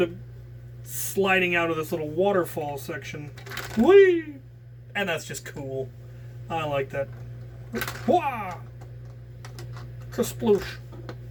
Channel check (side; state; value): both; identical; correlation 1.00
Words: up sliding out of this little waterfall section. Whee! And that's just cool. I like that. Wah! Kasploosh.